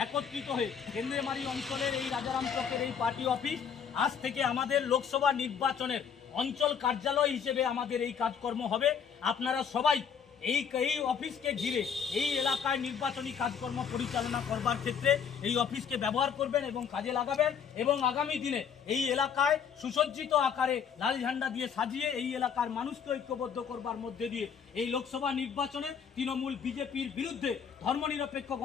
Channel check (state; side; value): quieter; right; 7.2 dB